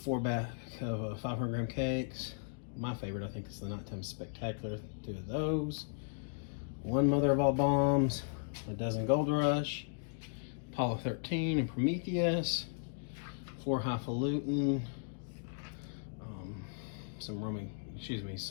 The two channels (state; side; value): silent; right; digital silence